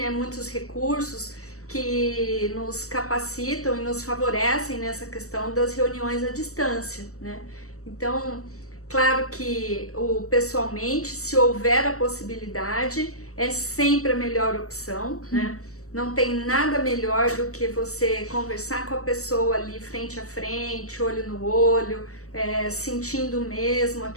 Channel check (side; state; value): right; late; 0.65 ms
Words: Muitos recursos que nos capacitam e nos favorecem nessa questão das reuniões à distância, né? Então, claro que pessoalmente, se houver a possibilidade, é sempre a melhor opção, né? Não tem nada melhor do que você conversar com a pessoa ali frente a frente, olho no olho, sentindo mesmo